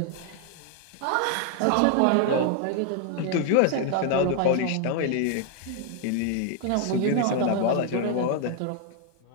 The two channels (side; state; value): both; different; correlation 0.00